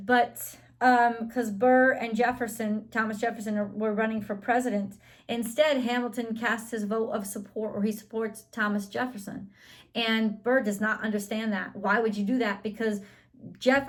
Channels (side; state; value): both; identical; correlation 1.00